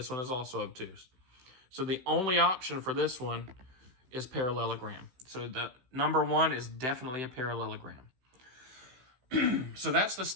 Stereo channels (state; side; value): late; left; 16 ms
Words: one is also obtuse. So the only option for this one is parallelogram. So the number 1 is definitely a parallelogram. So that's the